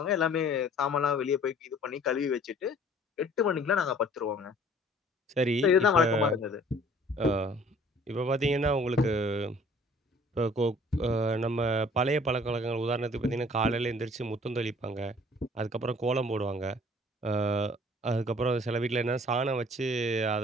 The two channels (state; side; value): normal; both; correlation 0.54